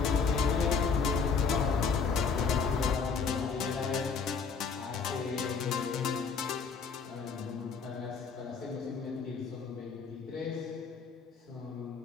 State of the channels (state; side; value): quieter; right; 5.5 dB